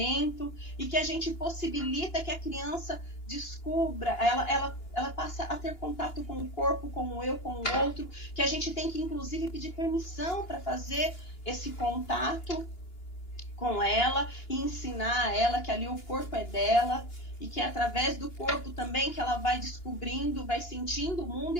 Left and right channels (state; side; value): late; right; 2.9 ms